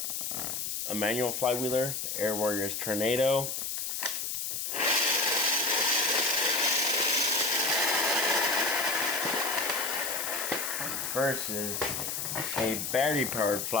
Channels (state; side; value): noise; left; hiss, 3 dB below the sound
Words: A manual Flywheeler, the Air Warriors Tornado. Versus a battery-powered